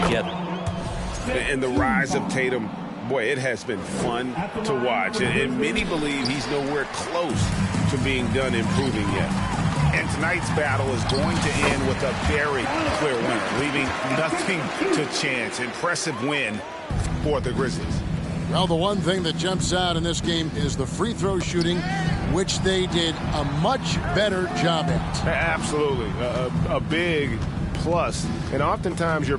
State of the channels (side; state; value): both; identical; correlation 1.00